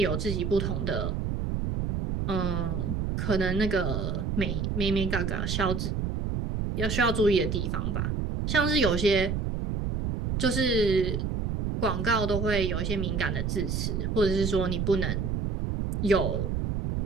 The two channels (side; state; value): right; noise; rumble, 1 dB below the sound